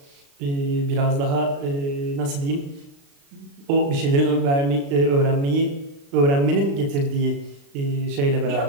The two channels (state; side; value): late; left; 36 ms